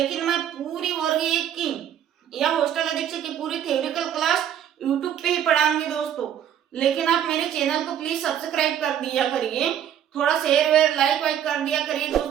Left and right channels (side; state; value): left; quieter; 9.9 dB